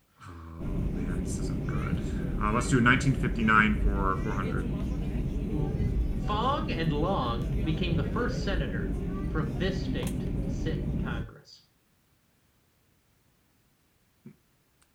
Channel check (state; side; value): identical; both; correlation 1.00